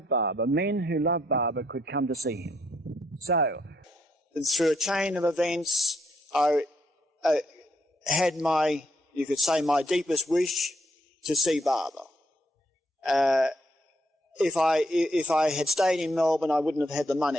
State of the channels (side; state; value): both; normal; correlation 0.73